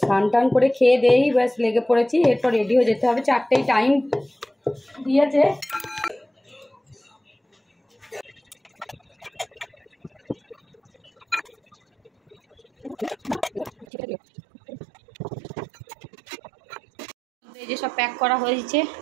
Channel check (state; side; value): drops out; left; at 13.9 s